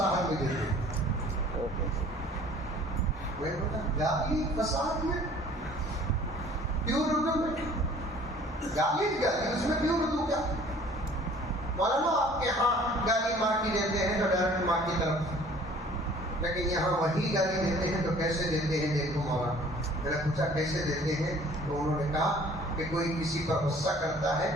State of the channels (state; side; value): normal; both; correlation 0.52